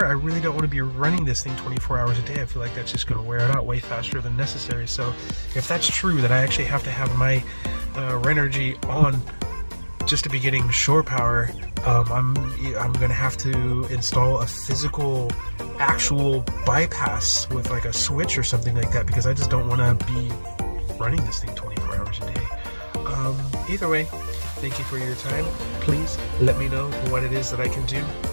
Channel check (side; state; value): both; inverted; correlation -1.00